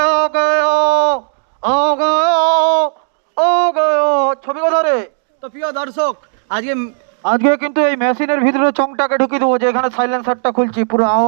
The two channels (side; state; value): left; silent; digital silence